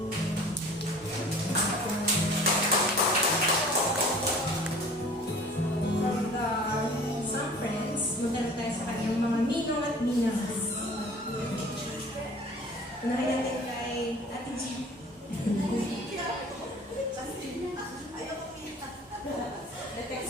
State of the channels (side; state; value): both; normal; correlation 0.46